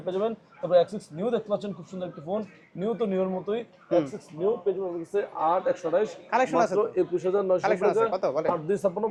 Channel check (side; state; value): both; identical; correlation 1.00